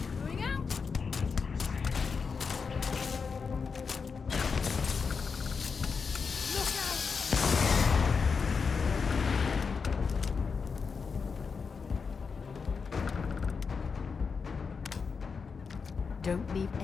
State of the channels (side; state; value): right; quieter; 5.4 dB